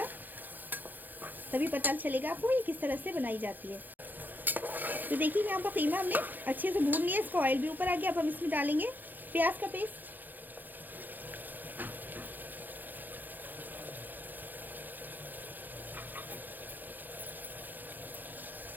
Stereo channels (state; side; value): late; left; 0.086 ms